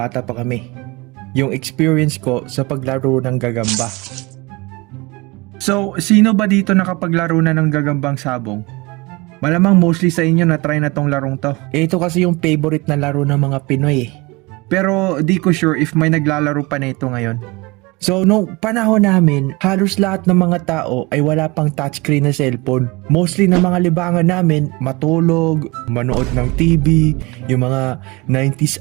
pa kami. Yung experience ko sa paglaro ng gagamba. So, sino ba dito nakapaglaro na ng gagambang sabong? Malamang mostly sa inyo na try na tong larong to. Ito kasi yung favorite na laro ng mga Pinoy eh. Pero di ko sure if may naglalaro pa na ito ngayon. So, nung panahon namin, halos lahat ng mga tao ay wala pang touchscreen na cellphone. Mostly na mga libangan namin, matulog, manood ng TV, yung mga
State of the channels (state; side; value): quieter; left; 24.4 dB